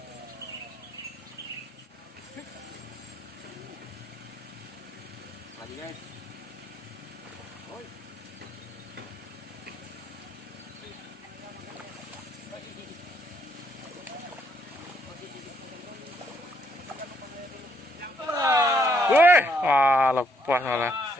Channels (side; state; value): both; normal; correlation 0.71